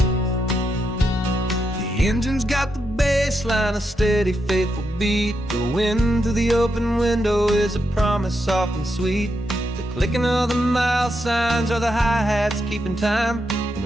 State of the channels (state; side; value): normal; both; correlation 0.83